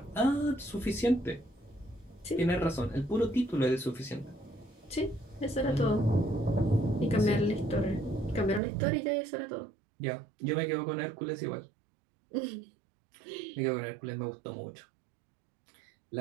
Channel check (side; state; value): left; drops out; at 8.6 s